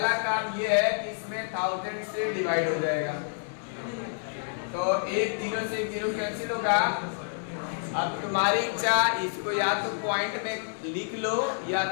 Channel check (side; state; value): right; silent; digital silence